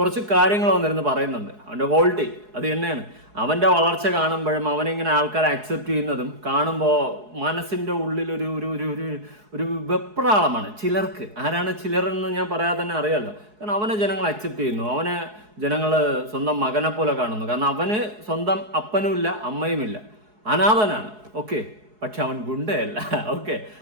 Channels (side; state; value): left; late; 4.7 ms